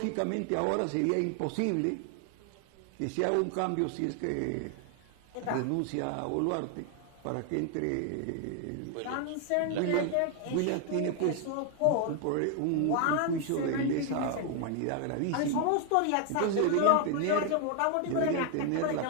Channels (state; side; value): different; both; correlation 0.00